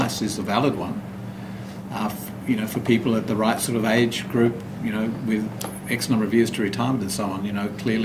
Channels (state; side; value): identical; both; correlation 1.00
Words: is a valid one. For people at the right sort of age group, with X number of years to retirement and so on,